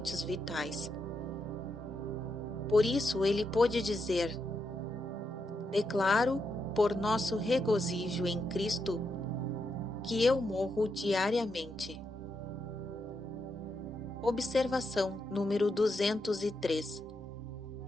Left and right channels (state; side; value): normal; both; correlation 0.83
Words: vitais. Por isso ele pôde dizer: declaro, por nosso regozijo em Cristo, que eu morro diariamente. Observação número 203.